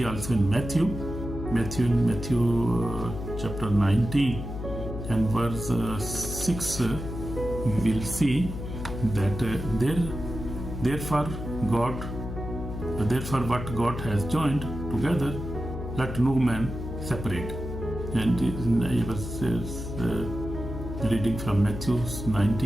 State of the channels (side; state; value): left; noise; hum, 7 dB below the sound